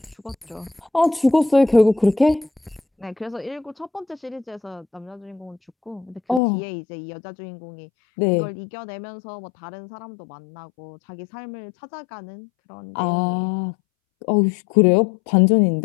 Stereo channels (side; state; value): right; drops out; at 6.4 s